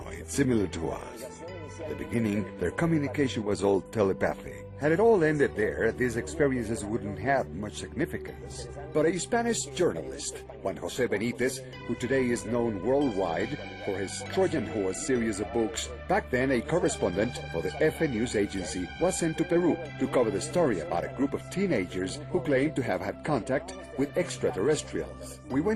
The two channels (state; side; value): identical; both; correlation 1.00